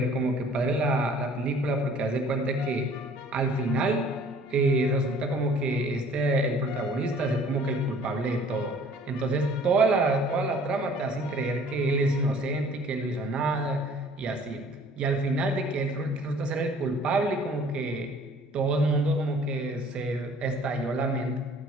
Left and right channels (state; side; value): normal; both; correlation 0.53